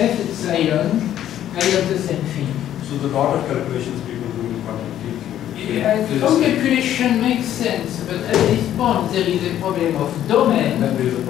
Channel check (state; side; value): quieter; right; 11.4 dB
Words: epsilon, I have the same thing. So the lot of calculations people do in quantum field. Some calculation makes sense, but at this point there is a problem of domain. And there is a